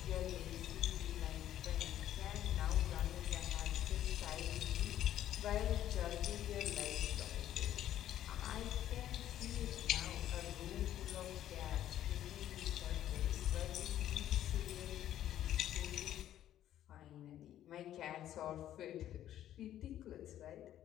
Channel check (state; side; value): quieter; right; 11.9 dB